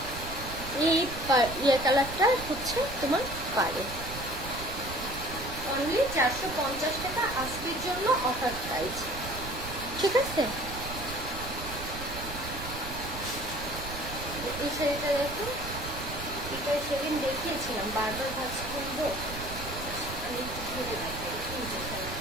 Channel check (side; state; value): right; noise; rumble, 10 dB below the sound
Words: এই কালারটা হচ্ছে তোমার পাড়ে, অনলি 450 টাকা আজকের জন্য অফার প্রাইস। ঠিক আছে, এই শাড়িটা দেখো, এটা সেদিন দেখিয়েছিলাম, বারবার ভাবছি কিনবো, আমি একটু ধরে দেখাই এই যে